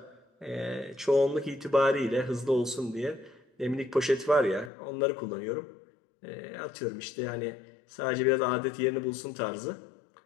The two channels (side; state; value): right; drops out; at 4.7 s